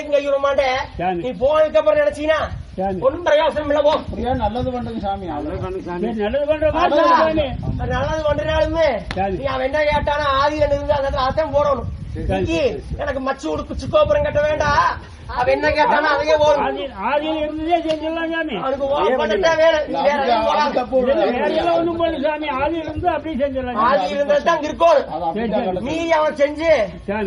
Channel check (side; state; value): both; identical; correlation 1.00